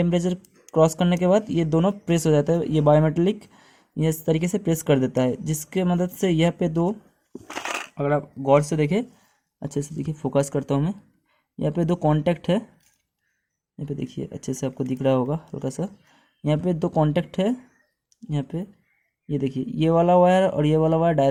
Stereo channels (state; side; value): identical; both; correlation 1.00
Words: क्रॉस करने के बाद ये दोनों प्रेस हो जाता है, ये बायोमेटालिक ये इस तरीके से प्रेस कर देता है, जिसके मदद से यह पे दो, अगर आप गौर से देखें, अच्छे से देखिए, फोकस करता हूँ मैं, यहाँ पे दो कांटेक्ट है, यहाँ पे देखिए अच्छे से आपको दिख रहा होगा हल्का सा, यहाँ पे दो कांटेक्ट है, यहाँ पे ये देखिए, ये वाला वायर और ये वाला वायर